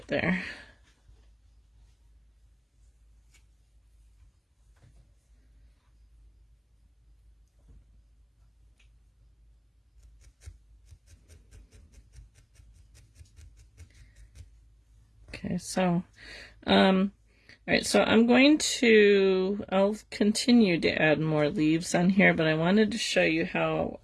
there. Okay, so, all All right, so I'll continue to add more leaves on here, but I wanted to show you how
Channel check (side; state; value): both; identical; correlation 1.00